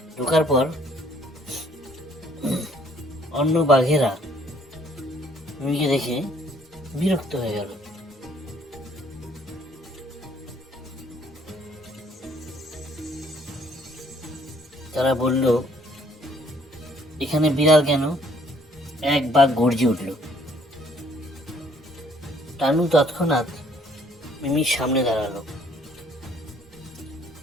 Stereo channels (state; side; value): normal; both; correlation 0.62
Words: ঢোকার পর অন্য বাঘেরা মিমিকে দেখে বিরক্ত হয়ে গেল। তারা বলল, এখানে বিড়াল কেন? এক বাঘ গর্জে উঠল। টানু তৎক্ষণাৎ মিমির সামনে দাঁড়ালো।